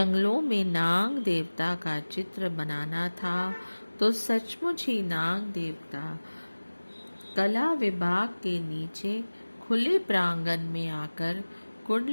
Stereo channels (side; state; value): both; inverted; correlation -1.00